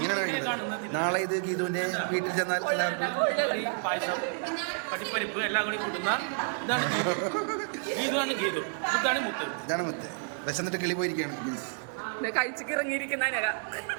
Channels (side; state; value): left; silent; 58 dB below the other